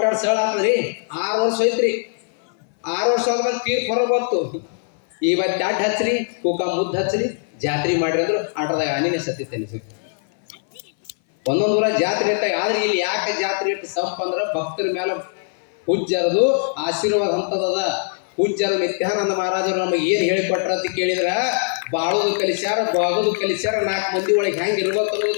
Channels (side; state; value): right; silent; 59 dB below the other